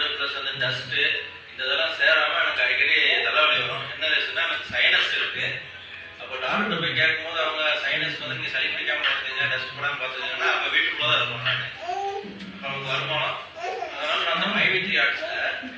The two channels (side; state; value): both; identical; correlation 1.00